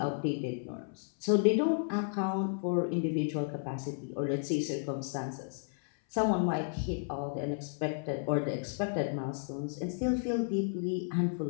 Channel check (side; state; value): right; silent; 56 dB below the other